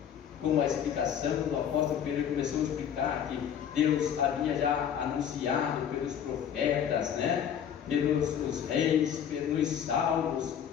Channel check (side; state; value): right; quieter; 8.8 dB